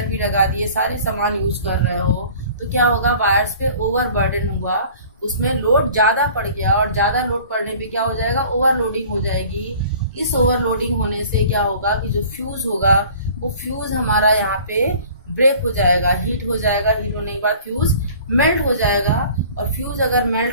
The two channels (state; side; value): inverted; both; correlation -0.48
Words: भी लगा दिए, सारे सामान यूज कर रहे हो, तो क्या होगा, वायर्स पे ओवरबर्डन हुआ, उसमें लोड ज्यादा पड़ गया, और ज्यादा लोड पड़ने पे क्या हो जाएगा, ओवरलोडिंग हो जाएगी। इस ओवरलोडिंग होने से क्या होगा कि जो फ्यूज होगा वो फ्यूज हमारा यहाँ पे ब्रेक हो जाएगा, हीट हो जाएगा, हीट होने के बाद फ्यूज मेल्ट हो जाएगा, और फ्यूज अगर